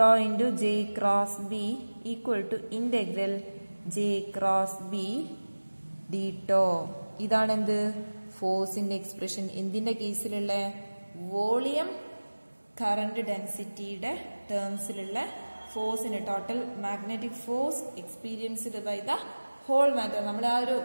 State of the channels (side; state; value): both; inverted; correlation -1.00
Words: into J cross B equal to integral J cross B D tau. ഇതാണ് എന്ത്? ഫോഴ്സിന്റെ എക്സ്പ്രഷൻ. എന്തിന്റെ കേസിലുള്ള? വോളിയം കറണ്ട് ഡെൻസിറ്റിയുടെ ടേംസിലുള്ള ഫോഴ്സിന്, total magnetic force experienced by the whole matter. നമ്മൾ ആ ഒരു